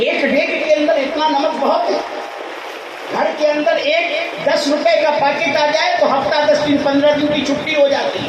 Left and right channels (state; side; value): identical; both; correlation 1.00